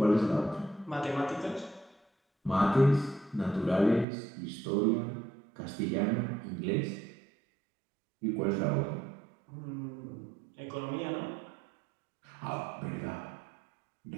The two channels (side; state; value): left; drops out; at 4.0 s